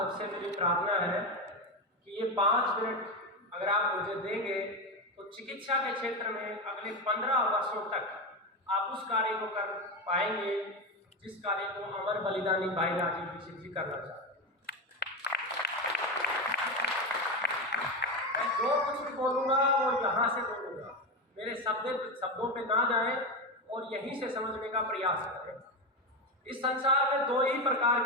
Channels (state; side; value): normal; both; correlation 0.16